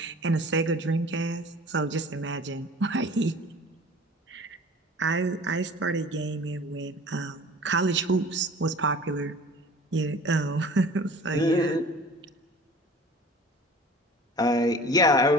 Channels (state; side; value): normal; both; correlation 0.44